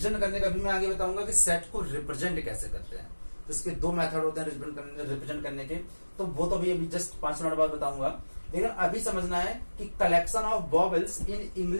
करने का भी मैं आगे बताऊंगा कि सेट को रिप्रेजेंट कैसे करते हैं। तो इसके 2 मेथड होते हैं रिप्रेजेंट करने के, तो वो तो अभी जस्ट 5 मिनट बाद बताऊंगा। लेकिन अभी समझना है कि collection of vowels in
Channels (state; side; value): inverted; both; correlation -1.00